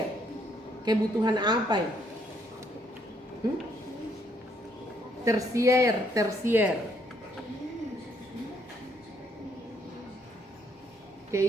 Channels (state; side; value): normal; both; correlation 0.69